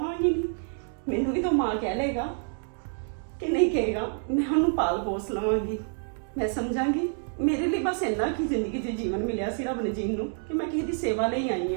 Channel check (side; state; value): left; silent; 59 dB below the other